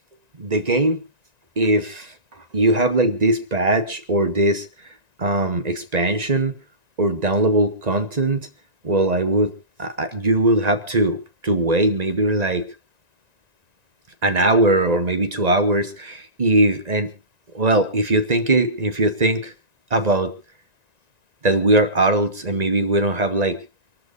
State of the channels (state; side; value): late; left; 1.9 ms